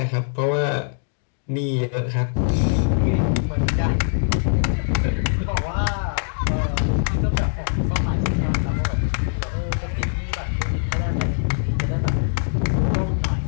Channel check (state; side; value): silent; right; digital silence